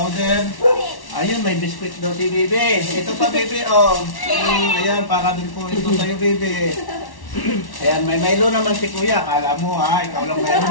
Ayun, may biscuit daw si Bibi. Ito pa, Bibi, oh. Ayan, para din po ito sa'yo, Bibi. Ayan, may Milo naman si Kuya. Kala mo, ha? Ikaw lang meron,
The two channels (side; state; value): right; late; 1.1 ms